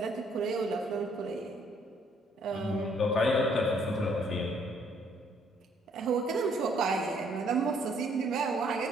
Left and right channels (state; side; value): normal; both; correlation 0.65